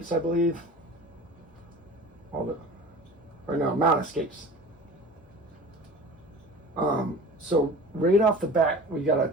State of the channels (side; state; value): both; normal; correlation 0.38